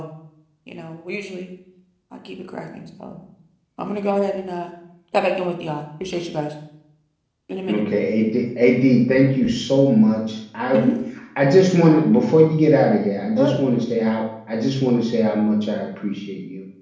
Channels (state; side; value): identical; both; correlation 1.00